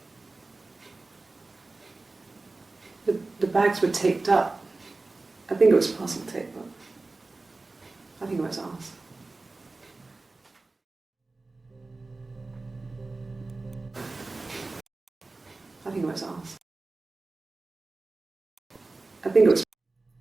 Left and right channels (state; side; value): quieter; left; 3.4 dB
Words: there. The bags were taped up. I think it was parcel tape, but I think it was ours. I think it was ours. I think it was.